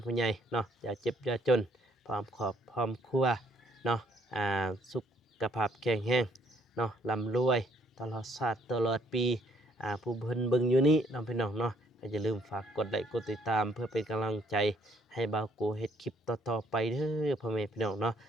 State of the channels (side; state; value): both; normal; correlation 0.66